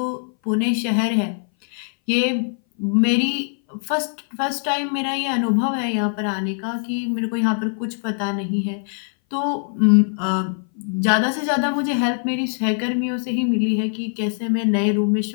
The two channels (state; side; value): silent; right; 59 dB below the other